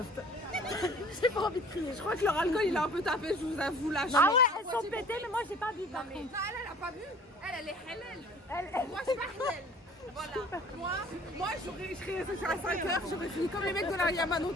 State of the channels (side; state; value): both; normal; correlation 0.50